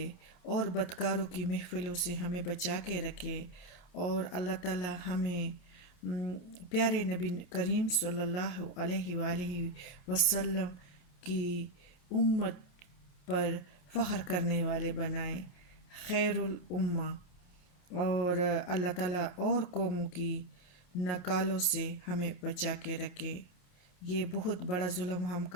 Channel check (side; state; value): right; late; 28 ms